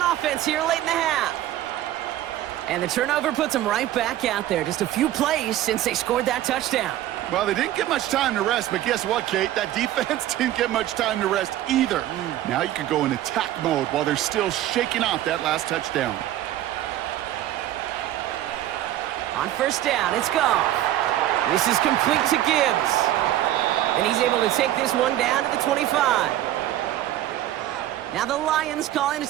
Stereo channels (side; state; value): left; quieter; 13.3 dB